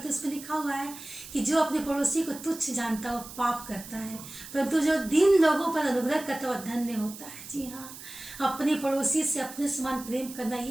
उसमें लिखा हुआ है कि जो अपने पड़ोसी को तुच्छ जानता है वो पाप करता है, परंतु जो दीन लोगों पर अनुग्रह करता है वह धन्य होता है। जी हाँ, अपने पड़ोसी से अपने समान प्रेम करना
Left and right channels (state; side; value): noise; right; hiss, 14 dB below the sound